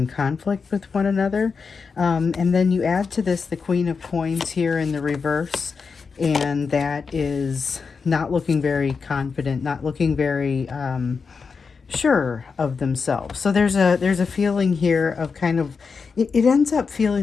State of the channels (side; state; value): right; quieter; 5.2 dB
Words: conflict with one another. And then you add to this the Queen of Coins here in the reverse, and that is not looking very confident, not looking very sure of themselves. So there's a feeling here of kind of it ends up